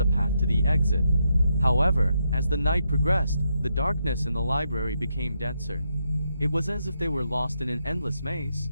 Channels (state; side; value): inverted; both; correlation -0.81